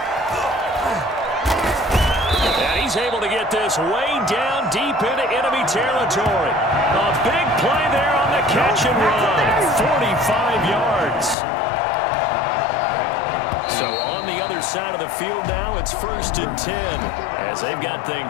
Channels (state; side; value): drops out; right; at 11.4 s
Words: And he's able to get this way down deep into enemy territory. A big play there on the catch and run. 45 yards. So on the other side of the field now, it's 1st and 10 as they've got